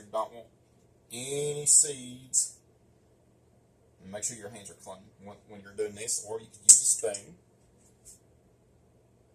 don't want any seeds. And make sure your hands are clean when you're doing this, or you can use a spoon.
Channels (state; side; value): identical; both; correlation 1.00